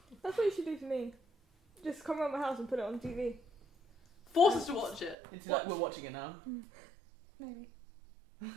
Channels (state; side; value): drops out; left; at 5.2 s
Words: That's what you should do for me. Just come around my house and put it on TV. Force us to watch it. It's like we're watching it now. Maybe. So